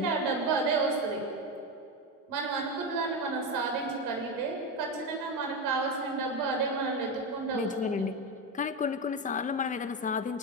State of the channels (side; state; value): both; normal; correlation 0.14